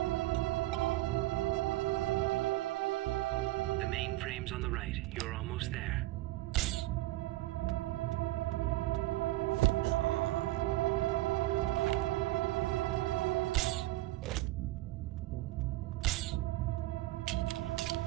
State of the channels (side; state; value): left; quieter; 18.0 dB